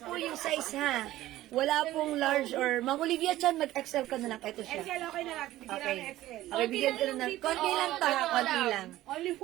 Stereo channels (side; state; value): left; quieter; 15.3 dB